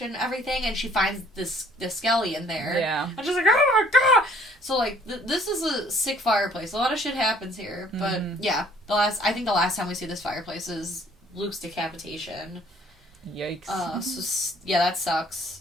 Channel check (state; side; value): normal; both; correlation 0.59